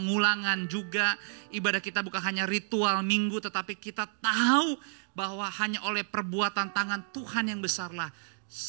juga. Ibadah kita bukan hanya ritual Minggu, tetapi kita tahu bahwa hanya oleh perbuatan tangan Tuhan yang besarlah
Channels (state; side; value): silent; left; digital silence